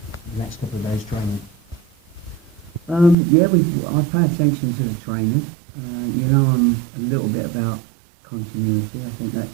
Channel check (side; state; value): left; drops out; at 3.2 s